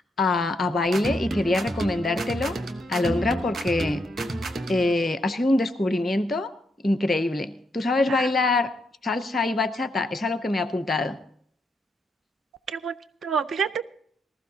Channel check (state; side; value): normal; both; correlation 0.79